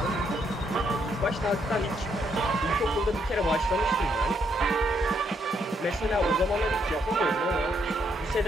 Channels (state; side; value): normal; both; correlation 0.75